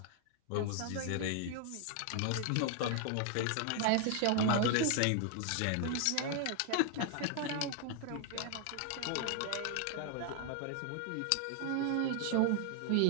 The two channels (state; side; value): different; both; correlation 0.00